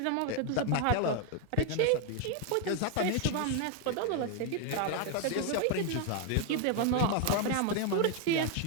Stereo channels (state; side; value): different; both; correlation 0.00